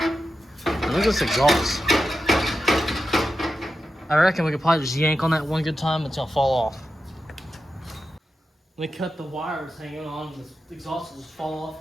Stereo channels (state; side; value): normal; both; correlation 0.90